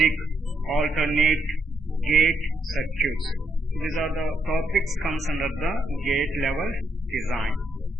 alternate gate circuits. These are the topics comes under the gate level design.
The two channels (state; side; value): normal; both; correlation 0.78